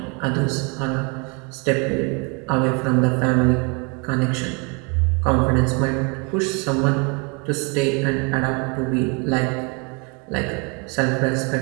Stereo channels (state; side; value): quieter; left; 32.6 dB